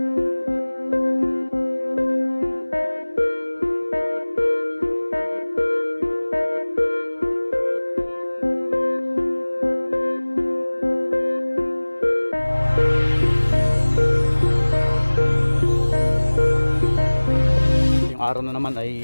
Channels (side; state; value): both; inverted; correlation -1.00